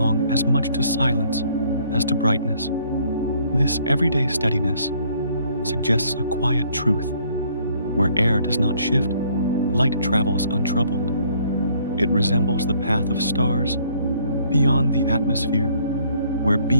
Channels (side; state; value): both; inverted; correlation -0.63